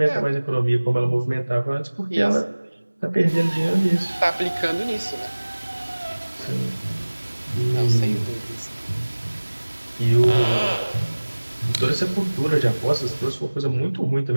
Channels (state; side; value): inverted; both; correlation -1.00